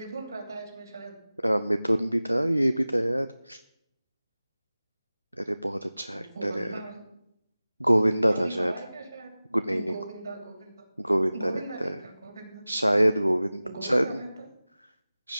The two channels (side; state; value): both; inverted; correlation -0.97